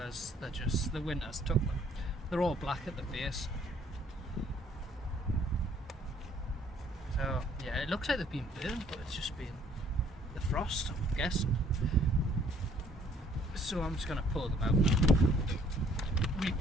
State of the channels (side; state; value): both; normal; correlation 0.61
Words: the winter's took them. They're all black at the base. So yeah, it looks like they've been burned, but it's just been the frost, I'm guessing. So I'm just gonna pull them out now.